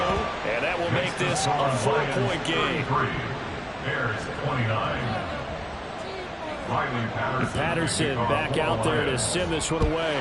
and that will make this a 4-point game. Bears 29. Riley Patterson back out there to send this one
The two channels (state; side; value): identical; both; correlation 1.00